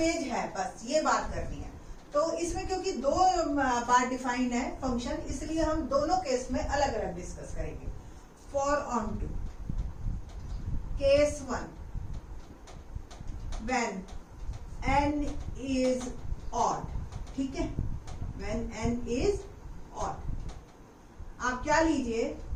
है, बस ये बात करनी है। तो इसमें क्योंकि दो बार डिफाइन है फंक्शन, इसलिए हम दोनों केस में अलग अलग डिस्कस करेंगे। For onto case 1 when n is odd, ठीक है, व्हेन n इज ऑड आप क्या लीजिए,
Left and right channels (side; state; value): both; identical; correlation 1.00